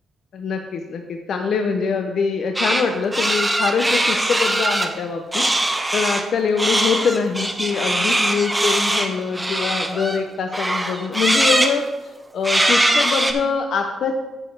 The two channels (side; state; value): both; normal; correlation 0.83